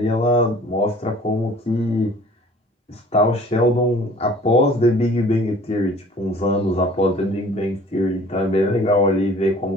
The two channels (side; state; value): both; normal; correlation 0.50